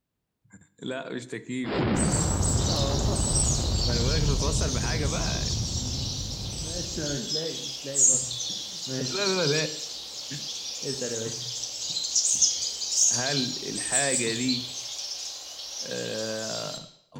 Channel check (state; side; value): identical; both; correlation 1.00